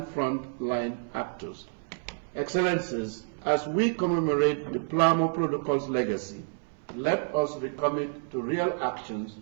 front-line actors. Excellencies, as we commemorate the Palermo Protocol's legacy, let us recommit to real actions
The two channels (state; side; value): silent; left; 59 dB below the other